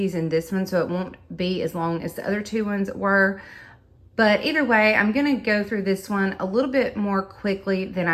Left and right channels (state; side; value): identical; both; correlation 1.00